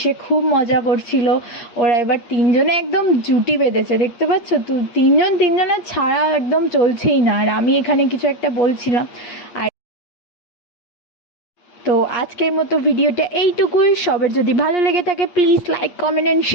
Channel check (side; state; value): right; late; 8.4 ms